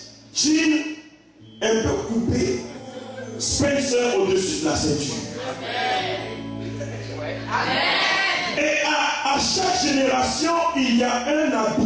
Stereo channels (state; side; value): identical; both; correlation 1.00